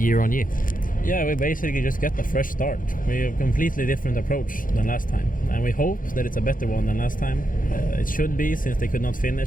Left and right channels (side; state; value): right; late; 0.40 ms